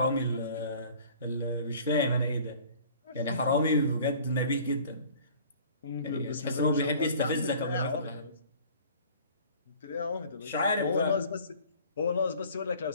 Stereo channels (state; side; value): inverted; both; correlation -0.49